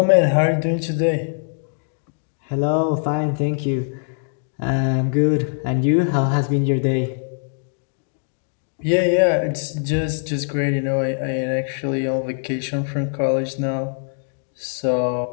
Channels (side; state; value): right; silent; digital silence